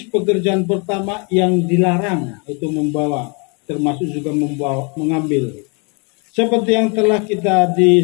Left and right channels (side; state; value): right; quieter; 33.7 dB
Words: pekerjaan pertama yang dilarang, itu membawa, termasuk juga mengambil. Seperti yang telah kita